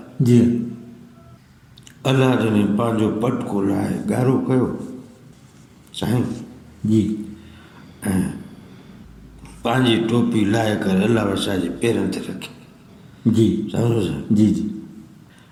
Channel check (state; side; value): identical; both; correlation 1.00